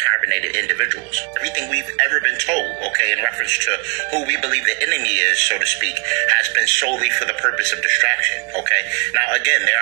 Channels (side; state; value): left; quieter; 36.6 dB